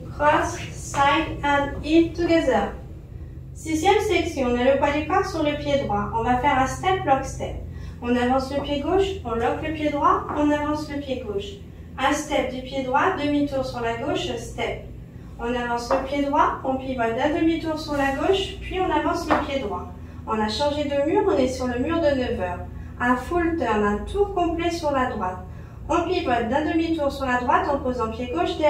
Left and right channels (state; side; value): identical; both; correlation 1.00